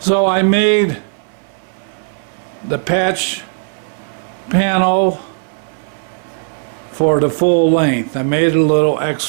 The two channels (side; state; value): left; silent; 61 dB below the other